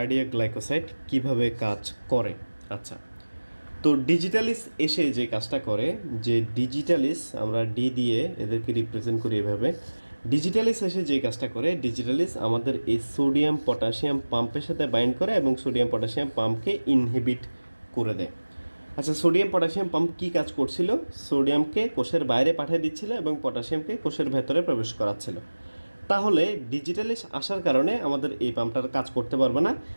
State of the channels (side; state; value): both; inverted; correlation -1.00